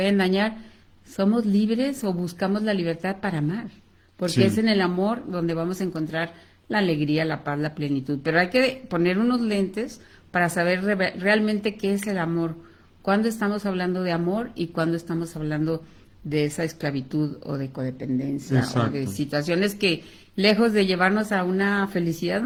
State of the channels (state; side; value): identical; both; correlation 1.00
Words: dañar? ¿Somos libres o buscamos la libertad para amar? Porque es sí, en el amor donde vamos a encontrar la alegría, la paz, la plenitud. Pero hay que poner unos lentes para saber realmente qué es el amor. ¿Cuándo estamos hablando de amor y cuándo estamos hablando de esa esclavitud o de codependencia o de exacto. situaciones que, lejos de llevarnos a una felicidad,